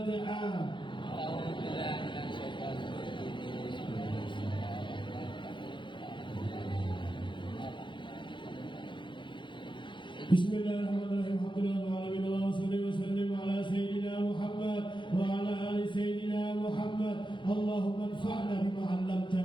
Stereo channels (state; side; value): late; right; 0.23 ms